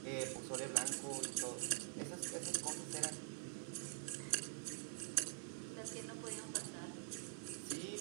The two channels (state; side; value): silent; left; digital silence